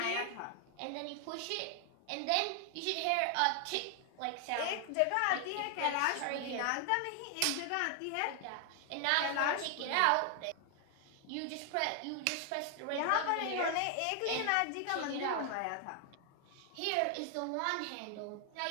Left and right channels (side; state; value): both; different; correlation 0.00